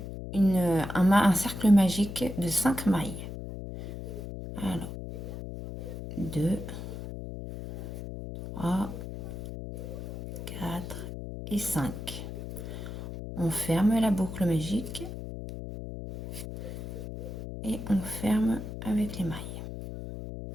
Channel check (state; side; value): noise; left; hum, 8 dB below the sound